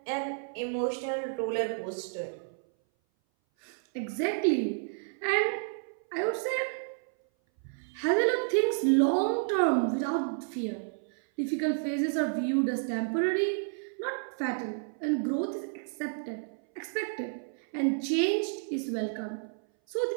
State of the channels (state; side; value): silent; left; 57 dB below the other